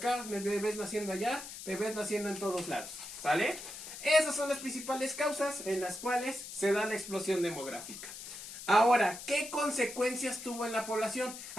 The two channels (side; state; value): left; noise; hiss, 11 dB below the sound